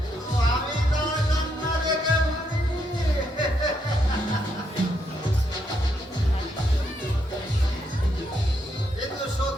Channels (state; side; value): normal; both; correlation 0.77